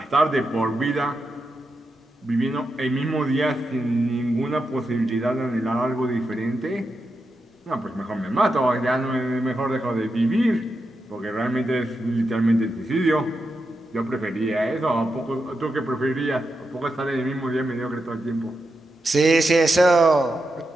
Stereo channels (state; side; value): normal; both; correlation 0.87